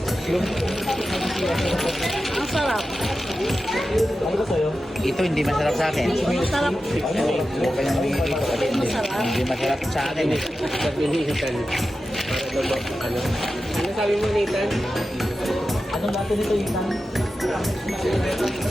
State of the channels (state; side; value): normal; both; correlation 0.92